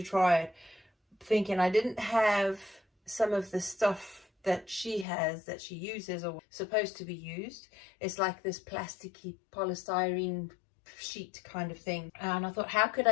try it, thinking I didn't have some of the stuff that she has, that she uses or supposed to be used. It's like this plasticky polystyrene sheet kind of thing, and I thought, how could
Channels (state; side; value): drops out; right; at 5.1 s